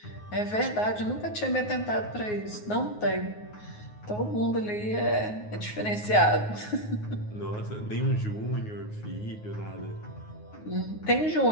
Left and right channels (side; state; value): right; late; 9.5 ms